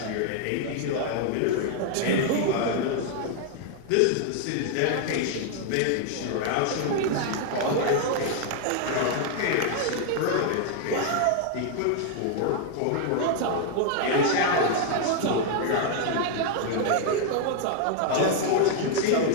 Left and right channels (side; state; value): both; different; correlation 0.00